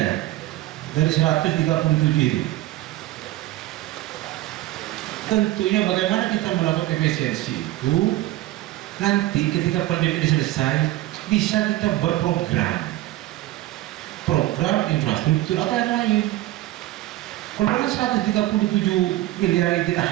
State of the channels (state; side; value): quieter; left; 16.1 dB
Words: ya dari 137 itu. Tentunya bagaimana kita melakukan efisiensi itu, nanti ketika pandemi ini selesai bisa kita berprogram, program infrastruktur atau yang lain. Kalau 137 miliar kita